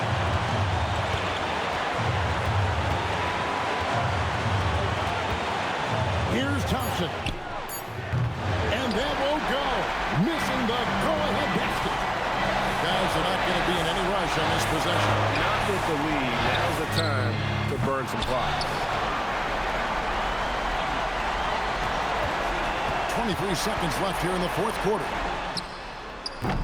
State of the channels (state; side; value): identical; both; correlation 1.00